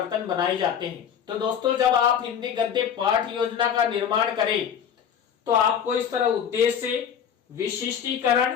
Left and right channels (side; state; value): right; quieter; 8.3 dB